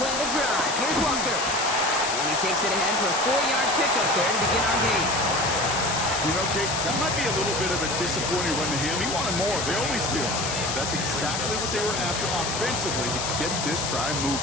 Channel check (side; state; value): left; noise; hiss, 3 dB below the sound